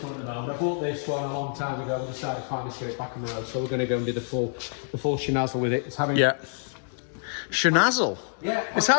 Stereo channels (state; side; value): silent; right; 60 dB below the other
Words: one at the moment. I bought this one a long time ago and decided to finally get it back on the road. So we're going to go and do the full shenazzle with it. It's having Shenazzle. Yeah. It's